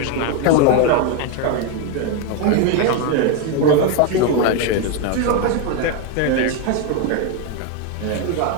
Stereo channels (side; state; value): both; different; correlation 0.02